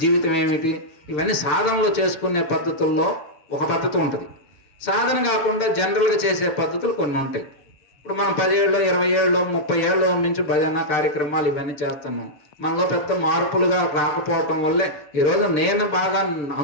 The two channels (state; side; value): late; right; 6.7 ms